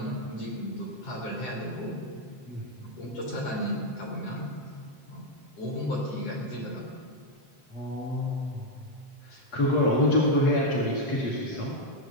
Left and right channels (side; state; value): right; late; 7.7 ms